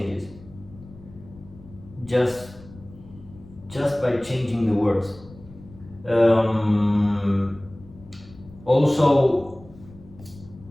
Just by changing the words.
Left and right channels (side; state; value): left; noise; rumble, 20 dB below the sound